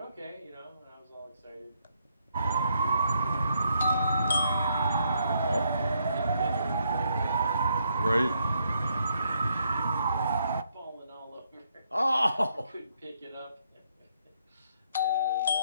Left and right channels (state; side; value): inverted; both; correlation -0.74